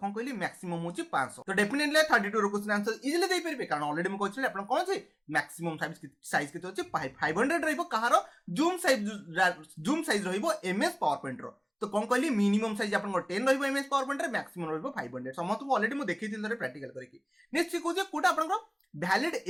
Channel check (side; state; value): both; identical; correlation 1.00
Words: कहली मैक्सिमम होची 500 तो डेफिनेटली 32 रो क्वेश्चन आंसर इजीली दे परबे कारण ऑलरेडी म कहछि आपण कोन छै मैक्सिमम साइज केते होची 500 रहइबो कहार जूम साइज रहइबो एमएस पावर पॉइंट रो तो कौन कहली मिनिमम साइज आपन 10 रहइबो एमएस पावर पॉइंट रे मैक्सिमम रहइबो 500 समस्त को ऑलरेडी म देखैथिल थरे प्रैक्टिकल करके नेक्स्ट को जे कोटा आपन भैलिड